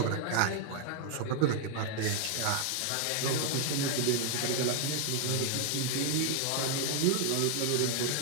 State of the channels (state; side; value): different; both; correlation 0.00